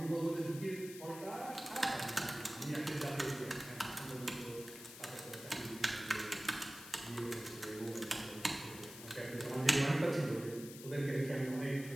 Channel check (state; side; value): noise; left; hiss, 13 dB below the sound